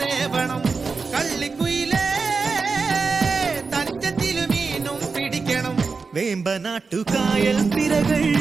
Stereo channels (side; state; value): left; quieter; 4.6 dB